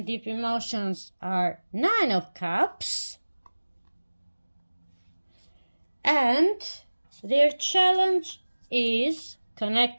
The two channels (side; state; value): both; inverted; correlation -1.00